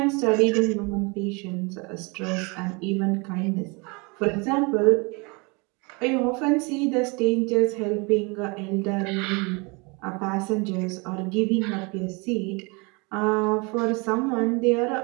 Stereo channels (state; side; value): quieter; left; 29.3 dB